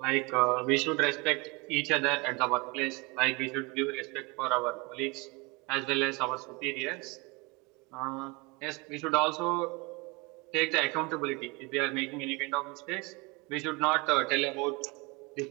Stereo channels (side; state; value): left; quieter; 27.1 dB